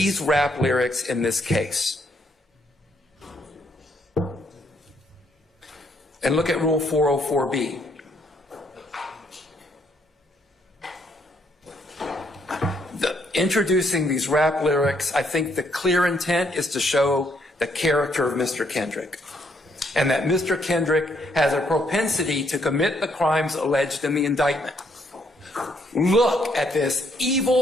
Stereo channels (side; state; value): both; normal; correlation 0.71